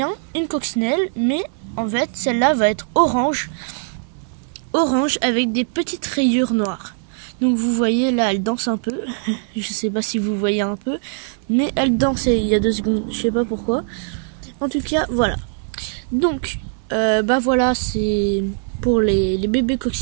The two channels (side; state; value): left; silent; 65 dB below the other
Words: une coccinelle, mais en fait, celle-là va être orange avec des petites rayures noires. Donc vous voyez, là, elle danse un peu. Je sais pas si vous voyez un peu, mais elle danse il y a 2 secondes, je sais pas pourquoi. En tout cas, voilà. Donc, voilà, c'est pour les bébés